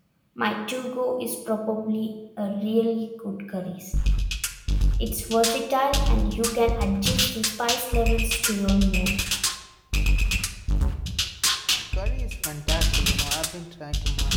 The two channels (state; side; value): identical; both; correlation 1.00